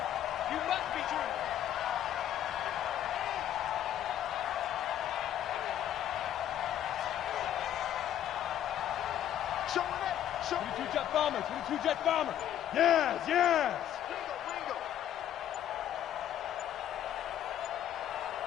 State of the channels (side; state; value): right; quieter; 11.1 dB